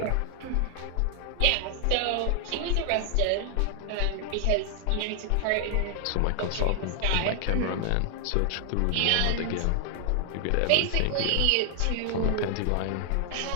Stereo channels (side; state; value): both; different; correlation 0.00